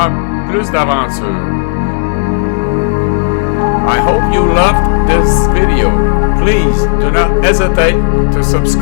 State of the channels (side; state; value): right; silent; digital silence